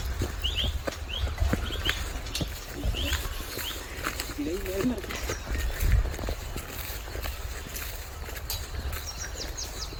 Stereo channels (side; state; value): both; identical; correlation 1.00